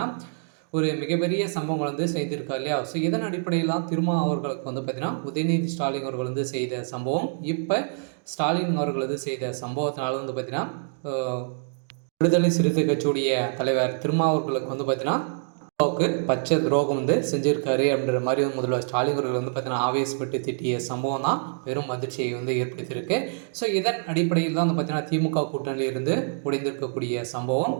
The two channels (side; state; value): left; silent; digital silence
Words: ஒரு மிகப்பெரிய சம்பவங்கள் செய்திருக்கா இல்லையா. ஸோ இதன் அடிப்படையில் தான் திருமா அவர்களுக்கு பார்த்தீங்கன்னா உதயநிதி ஸ்டாலின் அவர்கள் செய்த சம்பவம் இப்போ ஸ்டாலின் அவர்கள் செய்த சம்பவத்தினால பார்த்தீங்கன்னா விடுதலை சிறுத்தை கட்சியுடைய தலைவர் திருமாவர்களுக்கு பார்த்தீங்கன்னா பச்சை துரோகம் செஞ்சிருக்காரு அப்படின்ற மாதிரி முதல்வர் ஸ்டாலின் அவர்கள் பார்த்தீங்கன்னா ஆவேசப்பட்டு திட்டிய சம்பவம் தான் பெரும் அதிர்ச்சியை ஏற்படுத்தியிருக்கு. ஸோ இதன் அடிப்படையில் தான் பார்த்தீங்கன்னா திமுக கூட்டணியிலிருந்து உடைந்திருக்கக்கூடிய சம்பவம்